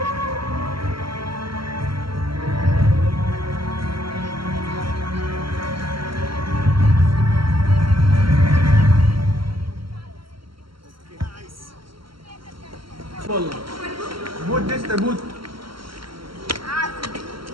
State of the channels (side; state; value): left; late; 0.74 ms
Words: भूत दिसतंय भूत.